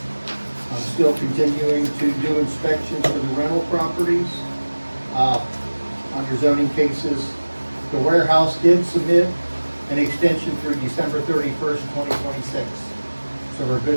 still continuing to do inspections for the rental properties. Under zoning cases, the warehouse did submit an extension through December 31st, 2026. So we're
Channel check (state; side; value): inverted; both; correlation -1.00